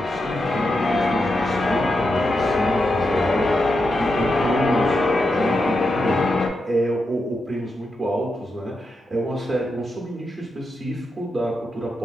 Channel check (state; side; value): normal; both; correlation 0.86